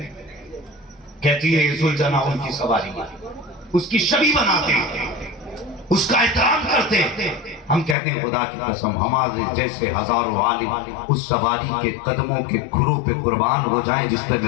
कहती है जुलजना उनकी सवारी, उसकी छवि बनाते हैं, उसका एहतराम करते हैं। हम कहते हैं खुदा की कसम हमारे जैसे हजारों आलिम उस सवारी के कदमों के खुरों पे कुर्बान हो जाएं जिस पे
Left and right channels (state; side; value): drops out; right; at 8.0 s